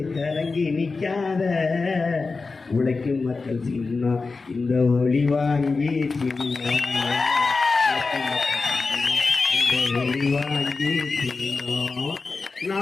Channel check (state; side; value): quieter; right; 4.1 dB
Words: கலங்கி நிக்காத. உழைக்கும் மக்கள் சின்னம் இந்த ஒளி வாங்கி சின்னம், இந்த ஒளி வாங்கி சின்னம்.